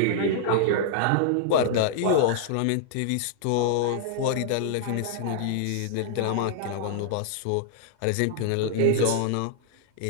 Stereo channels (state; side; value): different; both; correlation -0.01